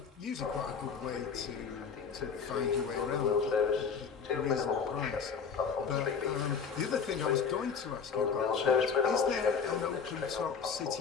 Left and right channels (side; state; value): right; quieter; 6.1 dB